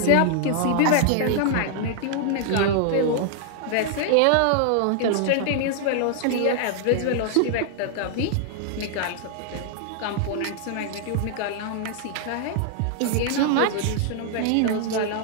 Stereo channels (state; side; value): different; both; correlation 0.00